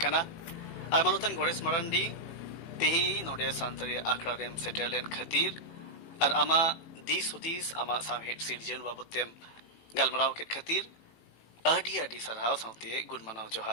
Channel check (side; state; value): right; late; 18 ms